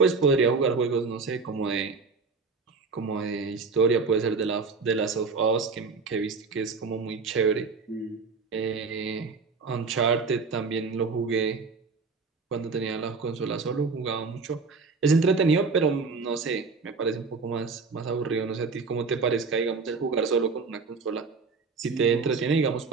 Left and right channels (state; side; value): quieter; left; 4.5 dB